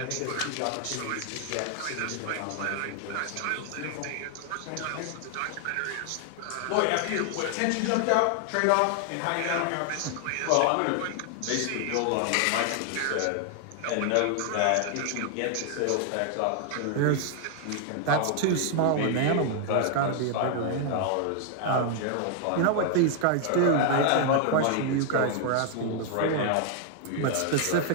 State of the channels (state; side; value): different; both; correlation 0.00